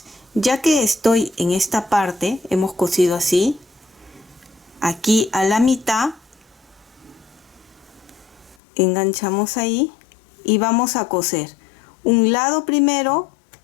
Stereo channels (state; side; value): drops out; right; at 8.6 s